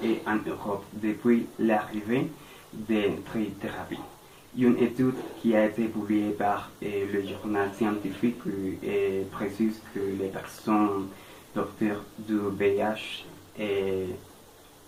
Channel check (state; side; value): identical; both; correlation 1.00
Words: et en Europe depuis l'arrivée des thérapies. Une étude qui a été publiée par le journal scientifique précise que les personnes porteurs du VIH